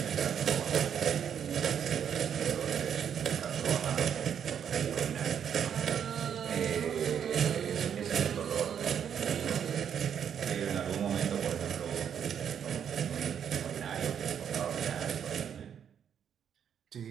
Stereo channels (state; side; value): quieter; left; 8.4 dB